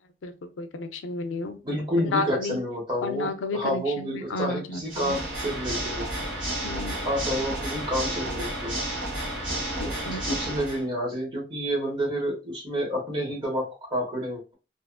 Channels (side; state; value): both; normal; correlation 0.38